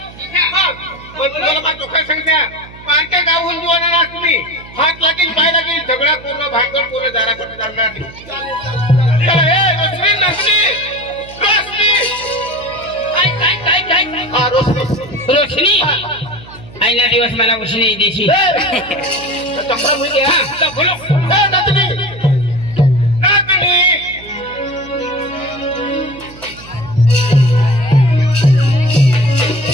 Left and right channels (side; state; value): right; noise; hum, 19 dB below the sound